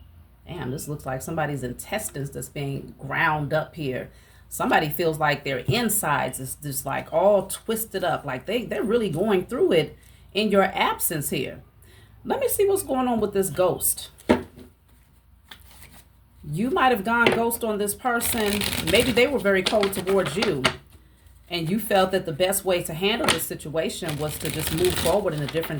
this looks like somebody's intestines that's being ground up here. Somebody feels like their insides is just like all twisted up. Like they're really going through it in your absence here. Let me see what's going on with this ghost. You might have gone ghost on this person. Maybe they were very cold towards you. And you felt that the best way to handle this situation was to just move forward in a different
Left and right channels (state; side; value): identical; both; correlation 1.00